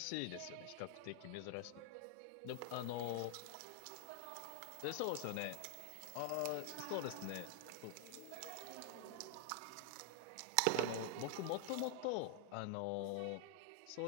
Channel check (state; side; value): different; both; correlation 0.00